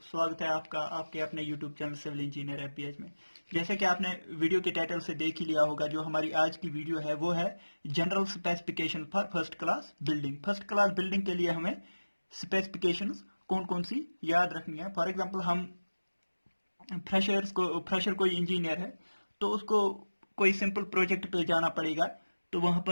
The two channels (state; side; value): inverted; both; correlation -1.00